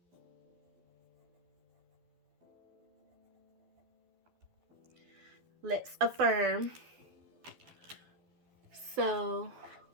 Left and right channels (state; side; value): late; left; 12 ms